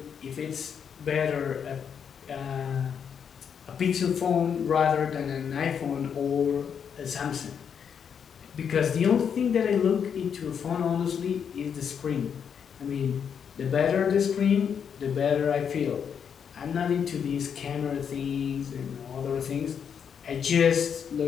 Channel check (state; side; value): quieter; right; 7.4 dB